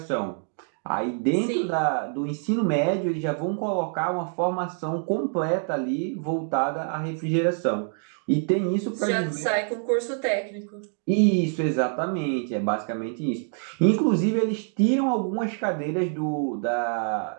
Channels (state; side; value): silent; left; 55 dB below the other